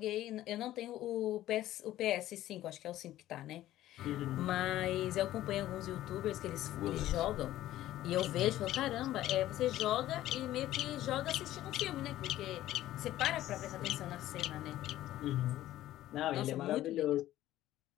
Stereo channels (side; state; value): right; quieter; 14.1 dB